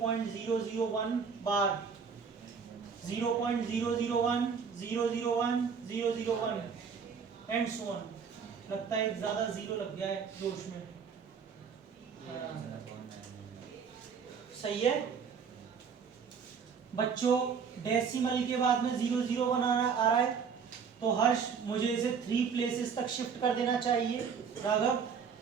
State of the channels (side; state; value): left; quieter; 6.3 dB